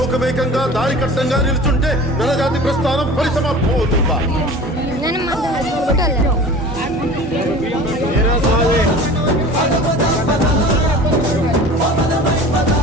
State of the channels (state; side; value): normal; both; correlation 0.40